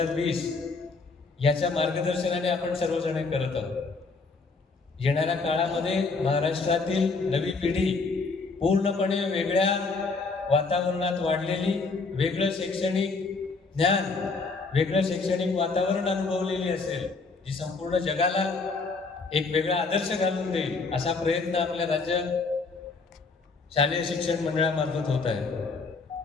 याच्या मार्गदर्शनाने आपण सर्वजण करत आहोत. येणाऱ्या काळामध्ये महाराष्ट्रातील नवी पिढी पूर्णपणे वेगळ्या वातावरणात वाढलेली, वेगळं शैक्षणिक ज्ञान, वेगळं शैक्षणिक वातावरण अनुभवलेली असेल, जी संपूर्ण जगाला एक वेगळा आदर्श घालून देईल असा प्रयत्न आपल्या राज्य शालेय शिक्षण मंडळामार्फत होत आहे.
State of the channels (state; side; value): quieter; right; 4.1 dB